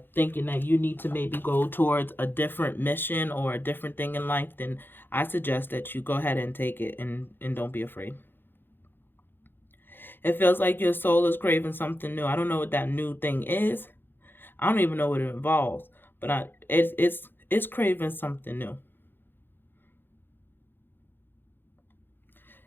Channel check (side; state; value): right; late; 0.099 ms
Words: thinking that you need to maybe go towards a different mission or a different thing in life, then I suggest that you go ahead and take it, and don't be afraid. It feels like your soul is craving something new. I don't know what that new thing is. I don't even know what it involves, but it's craving something new.